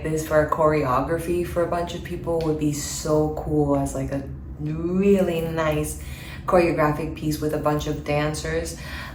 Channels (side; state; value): both; identical; correlation 1.00